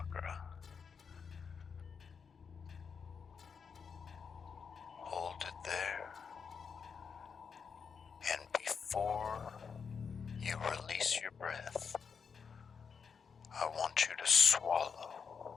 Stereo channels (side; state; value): right; quieter; 6.1 dB